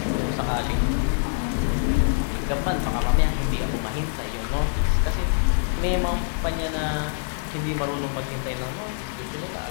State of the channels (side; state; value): right; silent; 56 dB below the other